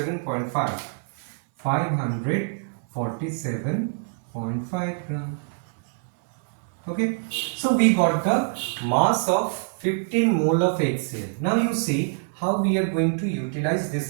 547.5 gram. Okay, so we got the mass of 15 mole of HCl. Now you see how we are going to utilize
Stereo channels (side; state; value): left; silent; 62 dB below the other